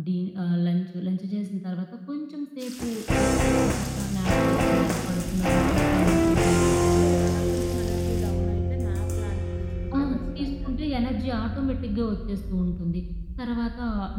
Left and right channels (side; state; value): both; identical; correlation 1.00